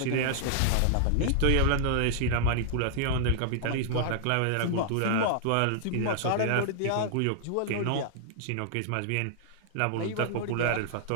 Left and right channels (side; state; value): both; different; correlation -0.01